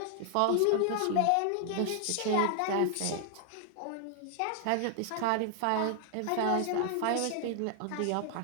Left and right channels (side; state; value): both; different; correlation 0.00